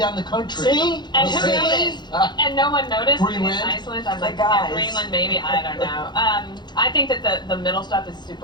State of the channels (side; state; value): right; late; 0.21 ms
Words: the country. See? And who noticed? And no one noticed Greenland? in Iceland. I'm like, guys. yeah, Greenland maybe. I don't know. I think that the middle stuff is